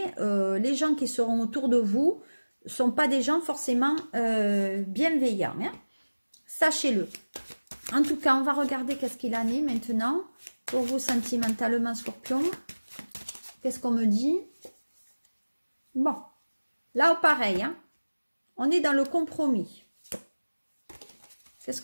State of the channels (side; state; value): both; inverted; correlation -1.00